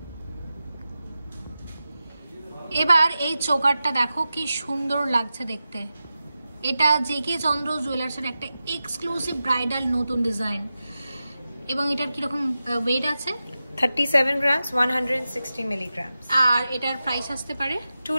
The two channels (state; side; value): inverted; both; correlation -0.93